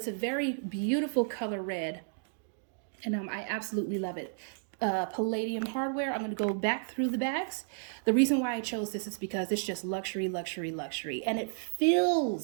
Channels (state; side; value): silent; left; digital silence